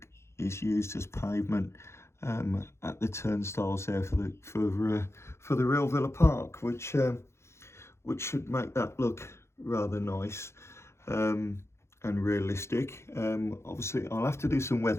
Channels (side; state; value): right; late; 0.13 ms